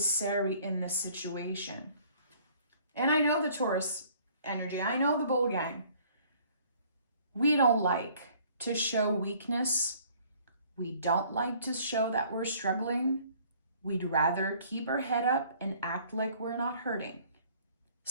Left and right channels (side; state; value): both; inverted; correlation -0.57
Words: in this situation. And I know the Taurus energy. I know the bull gang. We don't like to show weakness. We don't like to show that we're struggling. We'd rather keep our head up and act like we're not hurting.